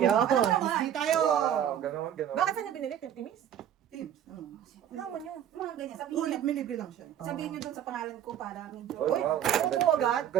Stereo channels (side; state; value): left; quieter; 10.2 dB